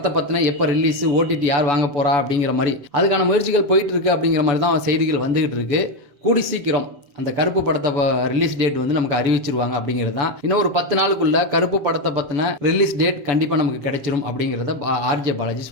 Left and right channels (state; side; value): late; left; 7.0 ms